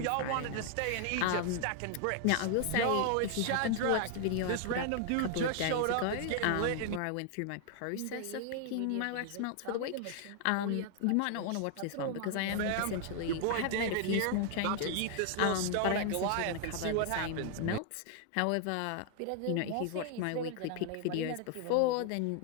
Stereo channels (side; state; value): both; different; correlation 0.00